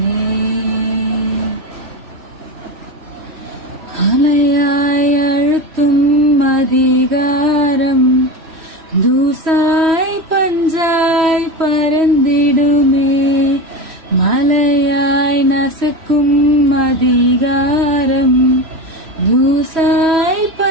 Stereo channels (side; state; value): left; late; 3.1 ms